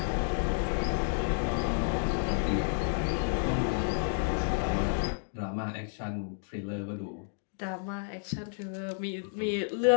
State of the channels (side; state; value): right; silent; digital silence